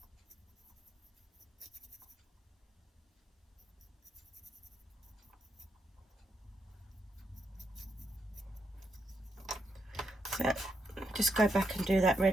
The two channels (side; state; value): both; normal; correlation 0.80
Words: So just go back and do that